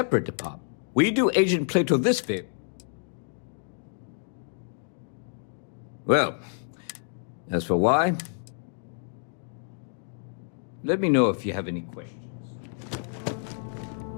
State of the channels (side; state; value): right; silent; digital silence